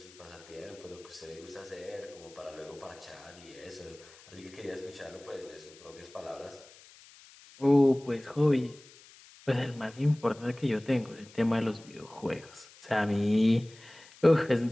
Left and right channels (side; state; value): left; noise; hiss, 22 dB below the sound